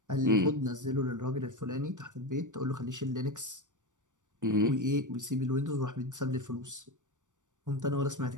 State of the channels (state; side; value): late; left; 0.86 ms